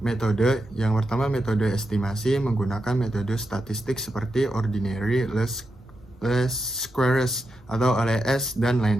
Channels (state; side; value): normal; both; correlation 0.87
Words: Yang pertama metode estimasi menggunakan metode statistik seperti ordinary, least squares atau LS dan